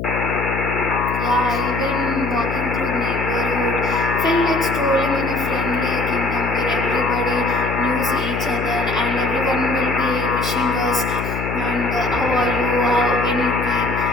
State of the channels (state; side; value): noise; left; hum, 4 dB below the sound